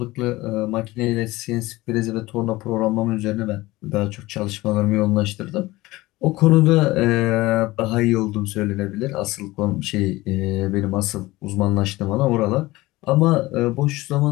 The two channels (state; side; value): quieter; right; 19.4 dB